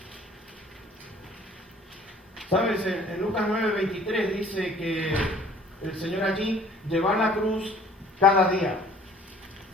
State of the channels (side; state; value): both; normal; correlation 0.53